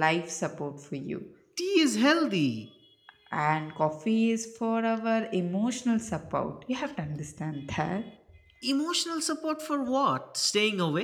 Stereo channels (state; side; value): identical; both; correlation 1.00